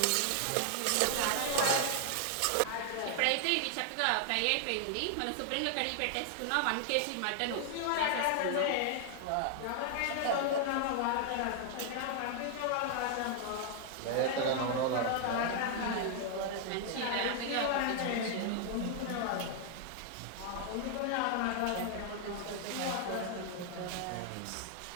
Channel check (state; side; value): different; both; correlation 0.00